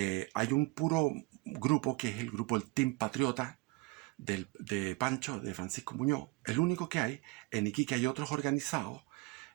Hay un puro grupo que es el grupo del Team Patriota de Pancho, de Francisco Muñoz, el único que hay. En Iquique hay otros organizados,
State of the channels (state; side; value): quieter; left; 23.9 dB